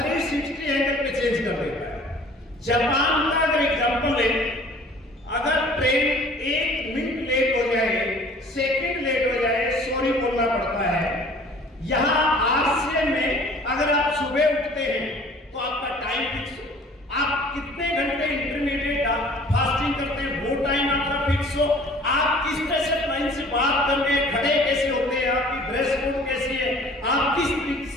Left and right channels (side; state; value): both; normal; correlation 0.50